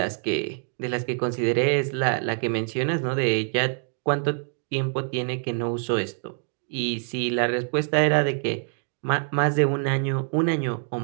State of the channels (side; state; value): left; silent; 58 dB below the other